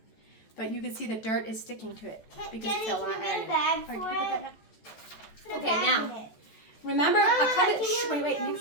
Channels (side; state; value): right; late; 14 ms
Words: But you can see the dirt is sticking to it because it's got a lot of iron in it. Okay, now. Remember, a compass. Shh, wait.